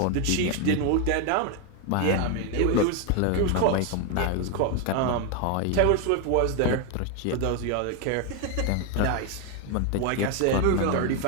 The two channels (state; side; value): different; both; correlation 0.01